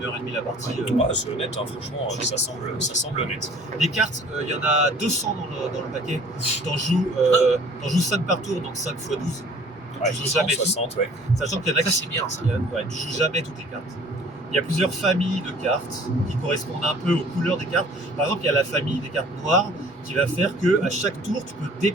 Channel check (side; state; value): both; normal; correlation 0.51